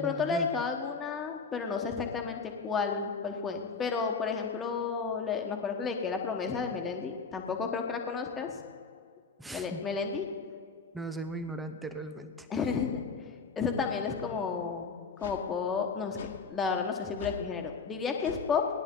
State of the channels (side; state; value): right; quieter; 4.9 dB